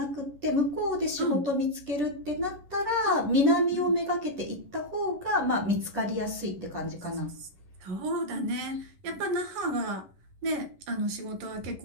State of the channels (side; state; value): left; late; 11 ms